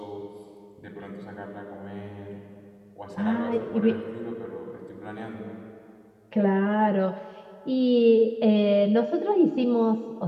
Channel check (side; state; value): both; identical; correlation 1.00